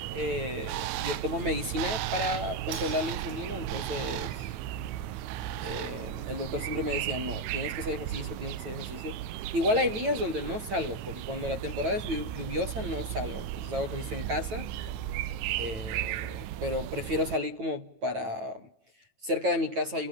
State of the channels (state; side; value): late; left; 9.1 ms